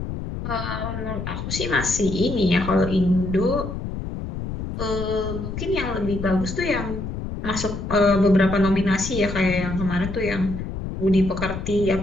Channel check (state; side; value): noise; left; rumble, 6 dB below the sound